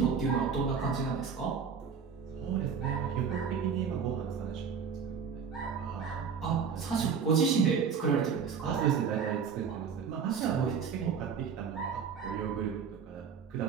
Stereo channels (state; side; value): quieter; left; 6.4 dB